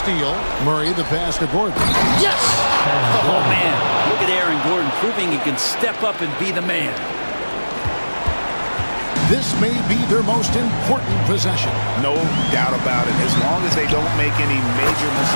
Murray the pass to Gordon. Yes! Oh, man. Look at Aaron Gordon proving he can step up and be the man. This may be their most important possession. No doubt about it. As long as they don't make any major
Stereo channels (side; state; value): both; inverted; correlation -1.00